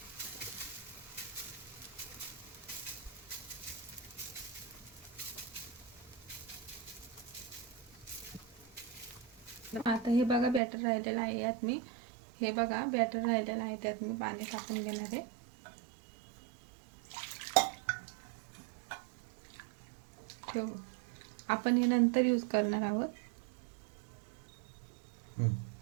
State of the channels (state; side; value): drops out; left; at 10.6 s